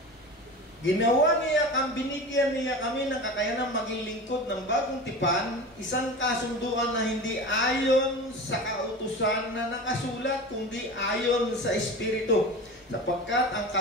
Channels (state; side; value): normal; both; correlation 0.32